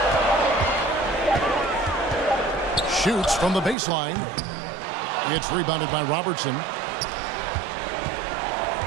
Shoots from the baseline. It's rebounded by Robertson.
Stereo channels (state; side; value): drops out; left; at 3.8 s